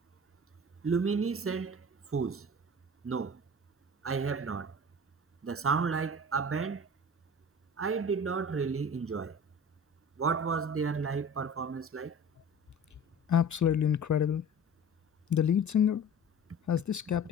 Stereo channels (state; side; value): normal; both; correlation 0.39